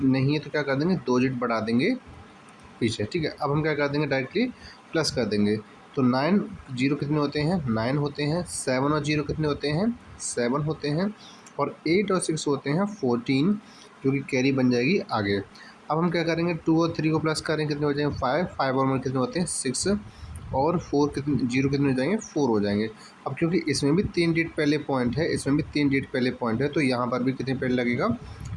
नहीं है तो क्या कर देंगे? 2 डिजिट बढ़ा देंगे पीछे, ठीक है। अब हम क्या कर देंगे? डायरेक्टली प्लस कर देंगे। तो 9 0 कितने होते हैं? 9 होते हैं। 7 और 0 कितने होते हैं? 7 होते हैं। और 8 और 6 होते हैं 14, जो कि कैरी बन जाएगी आगे। अब हम क्या करेंगे? 2 और 3 को प्लस करेंगे, कितने हो जाएंगे? 5। 5 और 1 कितने होते हैं? 6। और 4 कितने, 0 कितने हो जाएंगे? 4 हो जाएंगे। अब क्योंकि इसमें भी 3 डिजिट पहले पॉइंट है, इसमें भी 3 डिजिट पहले पॉइंट है, तो यहाँ पर भी कितने पहले लगेगा?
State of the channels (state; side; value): identical; both; correlation 1.00